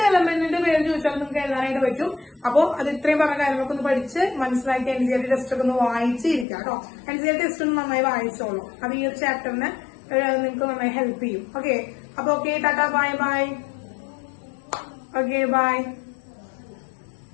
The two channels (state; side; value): drops out; right; at 6.5 s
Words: എലമെന്റിന്റെ പേര് ചോദിച്ചാൽ നിങ്ങൾക്ക് എഴുതാനായിട്ട് പറ്റും. അപ്പൊ അത് ഇത്രയും പറഞ്ഞ കാര്യങ്ങളൊക്കെ ഒന്ന് പഠിച്ച് മനസ്സിലാക്കി NCERT ടെസ്റ്റ് ഒക്കെ ഒന്ന് വായിച്ചിരിക്കാം കേട്ടോ. NCERT ടെസ്റ്റ് ഒന്ന് നന്നായി വായിച്ചോളൂ, അത് ഈ ഒരു ചാപ്റ്ററിന് നിങ്ങൾക്ക് നന്നായി ഹെൽപ്പ് ചെയ്യും. ഓക്കെ, അപ്പൊ okay, tata, bye. Okay, by.